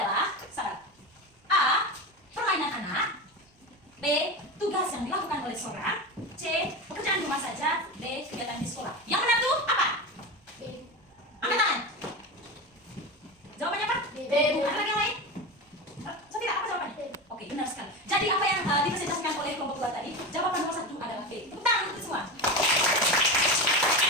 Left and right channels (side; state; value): both; normal; correlation 0.23